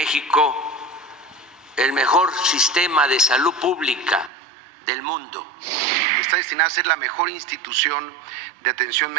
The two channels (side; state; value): left; drops out; at 4.3 s